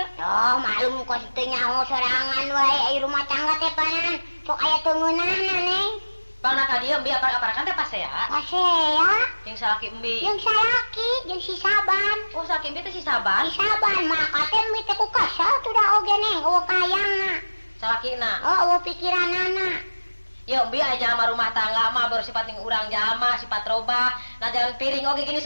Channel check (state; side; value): inverted; both; correlation -1.00